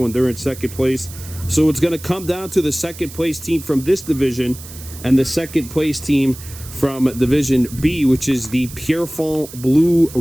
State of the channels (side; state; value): right; noise; hiss, 16 dB below the sound